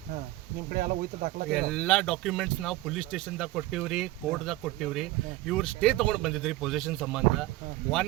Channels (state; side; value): quieter; left; 17.7 dB